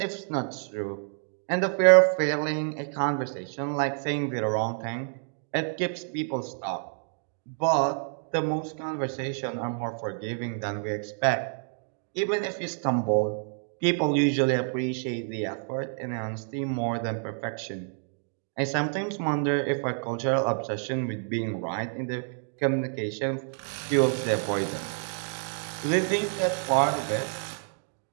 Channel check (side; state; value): left; silent; 59 dB below the other